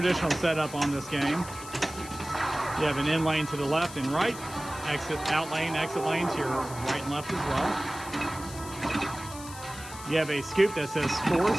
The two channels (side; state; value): left; noise; hiss, 14 dB below the sound